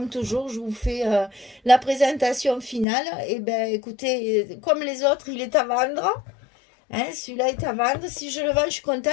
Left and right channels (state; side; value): drops out; right; at 2.9 s